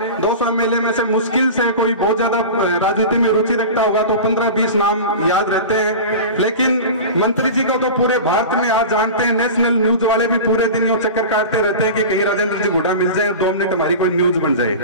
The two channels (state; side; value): inverted; both; correlation -0.31